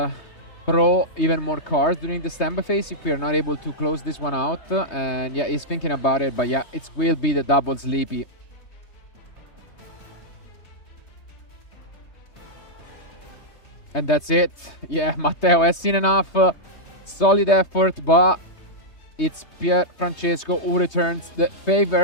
draw even more cards during the standby phase if we are not able to close this one out. And yeah, he's thinking about it, but yeah, it will be the double sleepy. And that's it. Yeah, Matteo has seen enough. Solid effort, but it's Pier Francesco who returns the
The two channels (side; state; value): right; late; 3.2 ms